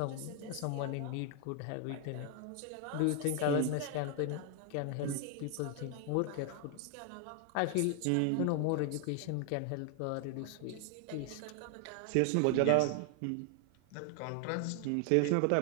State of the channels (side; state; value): both; different; correlation 0.00